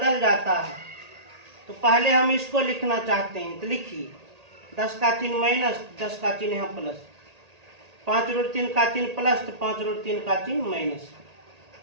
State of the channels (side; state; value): left; late; 1.8 ms